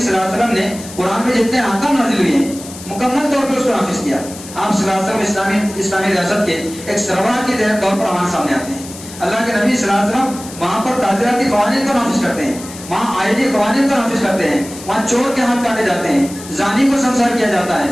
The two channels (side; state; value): left; noise; hiss, 15 dB below the sound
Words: اللہ علیہ وسلم نے قرآن میں جتنے احکام نازل ہوئے ہیں مکمل طور پر اس کو نافذ کیا. آپ صلی اللہ علیہ وسلم اسلامی ریاست کے ایک سربراہ کے طور پر ہمارے سامنے آتے ہیں. اللہ کے نبی صلی اللہ علیہ وسلم وہاں پر تعزیراتی قوانین کو نافذ کرتے ہیں, وہاں آئلی قوانین کو نافذ کرتے ہیں, وہاں چور کے ہاتھ کاٹے جاتے ہیں, زانی کو سنسار کیا جاتا ہے,